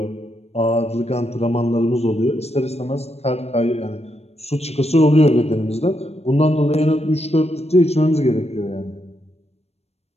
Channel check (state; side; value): late; right; 0.31 ms